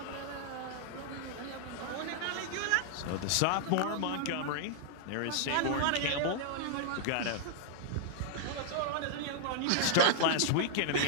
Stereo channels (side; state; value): both; different; correlation -0.01